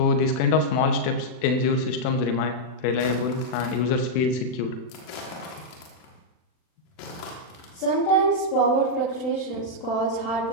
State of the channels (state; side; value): late; right; 39 ms